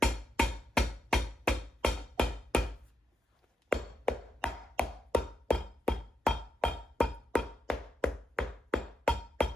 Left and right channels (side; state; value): both; normal; correlation 0.84